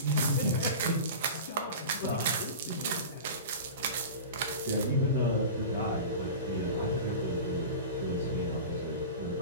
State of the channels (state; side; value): inverted; both; correlation -0.32